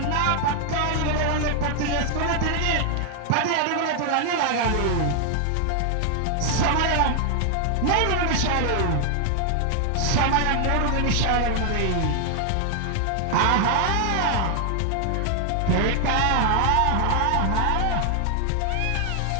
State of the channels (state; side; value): different; both; correlation 0.00